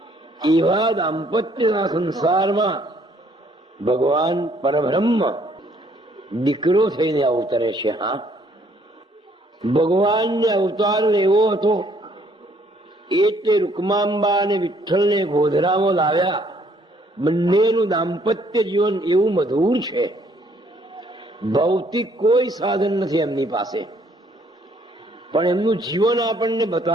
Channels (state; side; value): normal; both; correlation 0.65